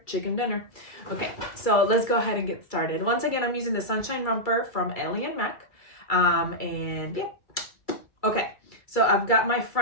chicken dinner. Okay, so let's go ahead and get started. Once again, I'm using the Sunshine Romper from Ellie and Mac. And yeah. Okay, so I've got my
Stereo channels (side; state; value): right; late; 2.3 ms